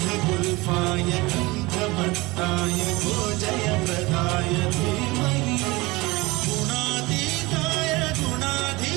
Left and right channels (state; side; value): quieter; left; 22.5 dB